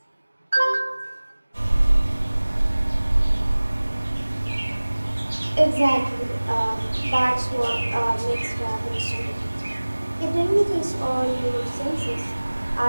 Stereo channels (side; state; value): both; inverted; correlation -1.00